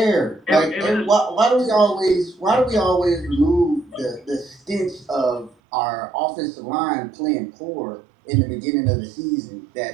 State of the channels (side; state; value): left; drops out; at 5.6 s